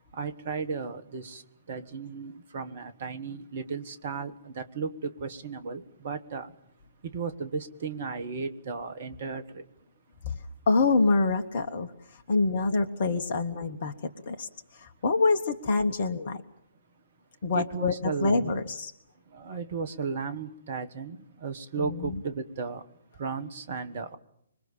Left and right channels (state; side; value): inverted; both; correlation -0.72